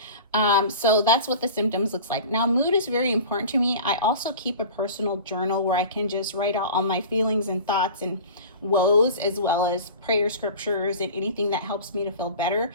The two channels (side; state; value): both; inverted; correlation -0.38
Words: so that's what the symptoms looks like. Now, mood is very important to me. I also keep a personal journal where I can just write out all my feelings and thoughts and woes, as well as prayer scriptures and anything that helps me to feel better.